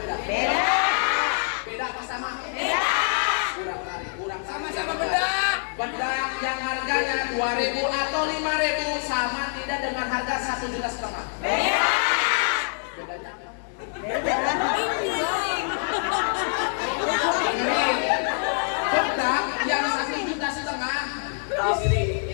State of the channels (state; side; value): silent; right; digital silence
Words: Beda. Beda apa sama? Beda. Kurang tarik. Sama-sama bedak. Bedak yang harganya 2.000 atau 5.000 sama tidak dengan harga 1,5 juta? Beda. Bedanya apa? Beda. Dengerin. Bedak yang 1,5 juta